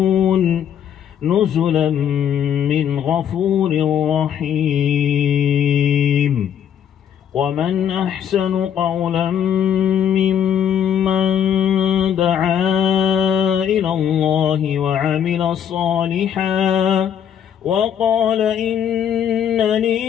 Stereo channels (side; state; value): right; quieter; 9.1 dB